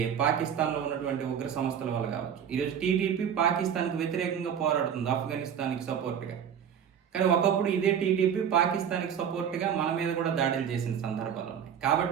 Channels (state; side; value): quieter; left; 8.4 dB